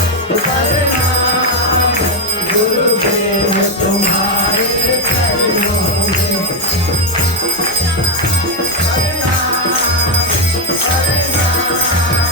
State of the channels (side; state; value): both; normal; correlation 0.04